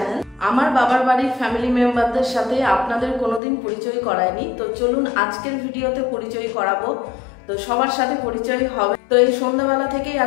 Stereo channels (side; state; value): right; drops out; at 3.4 s